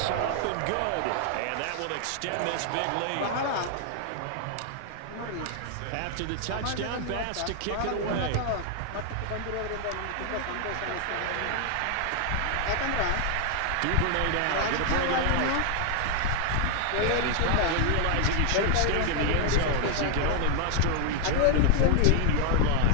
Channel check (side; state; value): both; different; correlation 0.00